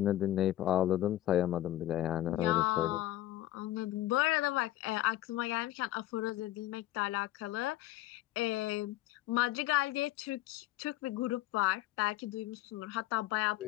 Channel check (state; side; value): quieter; right; 14.9 dB